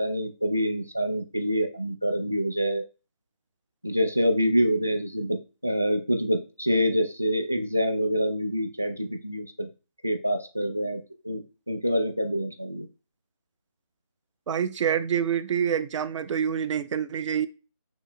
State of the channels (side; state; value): both; inverted; correlation -0.79